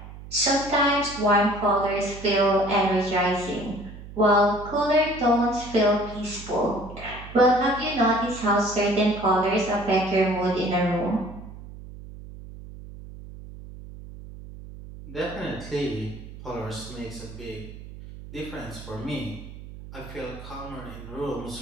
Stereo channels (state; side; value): noise; right; hum, 14 dB below the sound